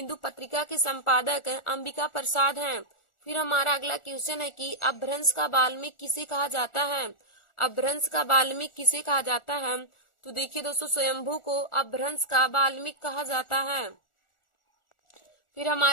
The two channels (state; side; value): late; right; 1.4 ms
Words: पत्रिका के संपादक अंबिका प्रसाद हैं। फिर हमारा अगला क्वेश्चन है कि अपभ्रंश का वाल्मीकि किसे कहा जाता है? अपभ्रंश का वाल्मीकि किसे कहा जाता है? तो देखिए दोस्तों, स्वयंभू को अपभ्रंश का वाल्मीकि कहा जाता है। फिर